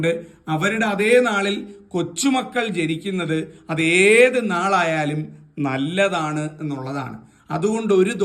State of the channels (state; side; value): identical; both; correlation 1.00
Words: അവരുടെ അതേ നാളിൽ കൊച്ചുമക്കൾ ജനിക്കുന്നത് അതേത് നാളായാലും നല്ലതാണ് എന്നുള്ളതാണ്. അതുകൊണ്ട് ഒരു